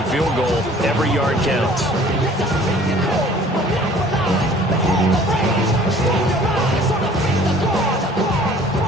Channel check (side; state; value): both; normal; correlation 0.52